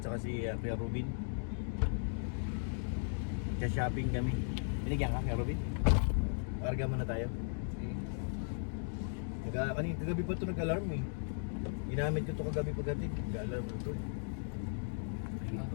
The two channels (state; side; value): silent; right; digital silence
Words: si Kuya Rubin. Shopping kami. Binigyan ka, Kuya Rubin? Karga muna tayo. Kagabi pa ito nag-alarm eh. Ginamit ko ito kagabi pagdating. Nag-alarm ito.